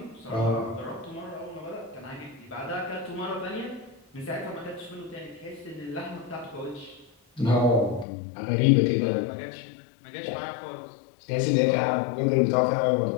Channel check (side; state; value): right; drops out; at 8.1 s